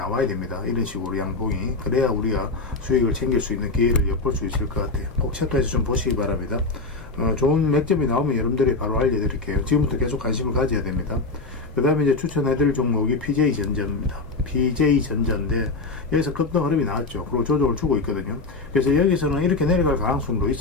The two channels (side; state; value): right; quieter; 3.6 dB